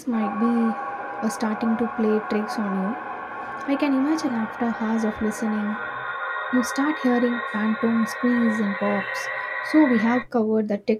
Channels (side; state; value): both; identical; correlation 1.00